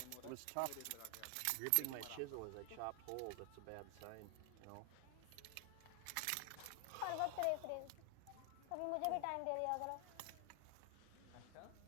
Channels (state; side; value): different; both; correlation 0.00